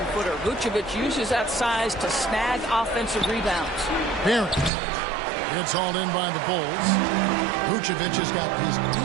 Vucevic uses that size to snag offensive rebounds. Barrett. It's hauled in by the Bulls. Vucevic has got his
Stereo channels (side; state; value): left; drops out; at 4.7 s